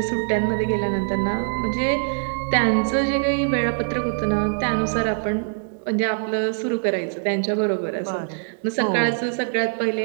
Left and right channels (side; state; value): left; silent; digital silence